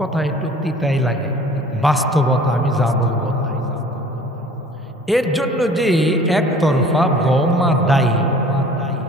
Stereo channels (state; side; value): normal; both; correlation 0.48